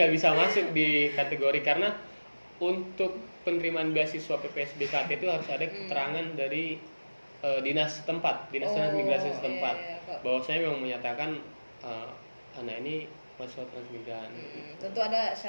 nggak bisa masuk di kategori karena untuk penerimaan beasiswa PPSBKT itu harus ada keterangan dari dinas setempat, dinas transmigrasi setempat, iya, kok. bahwasanya memang menyatakan anak ini mahasiswa transmigran. Tentu ada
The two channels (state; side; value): inverted; both; correlation -1.00